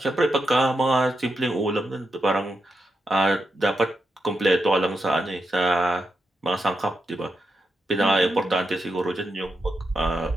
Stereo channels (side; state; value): both; normal; correlation 0.85